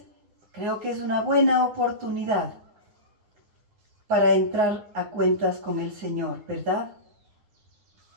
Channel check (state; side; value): late; left; 9.5 ms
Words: Creo que es una buena oportunidad para entrar a cuentas con el Señor, ¿verdad?